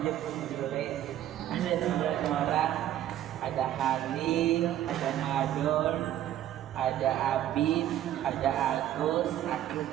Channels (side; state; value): left; quieter; 12.1 dB